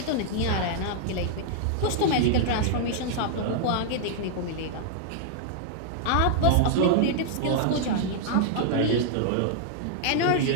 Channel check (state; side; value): different; both; correlation -0.01